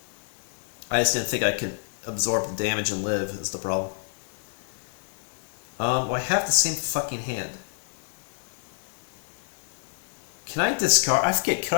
I just didn't think I could absorb the damage and live, is the problem. Well, I have the same fucking hand. Can I discard? I forget,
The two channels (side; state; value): right; silent; 60 dB below the other